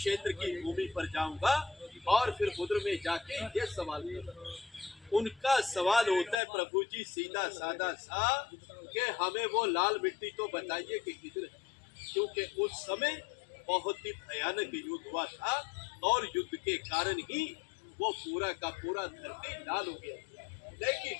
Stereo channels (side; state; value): right; drops out; at 6.4 s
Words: की भूमि पर जाऊंगा और फिर उधर में जाके ये सवाल करूंगा। उनका सवाल होता है प्रभु जी सीधा साधा सा कि हमें वो लाल मिट्टी तो बताइए कि किधर है, क्योंकि उस समय बहुत ही भयानक युद्ध हुआ था और युद्ध के कारण ही वो पूरा का पूरा धरती लाल हो गया।